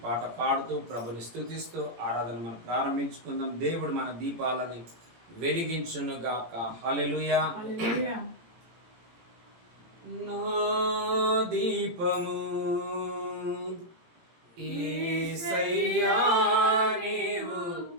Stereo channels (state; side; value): late; left; 18 ms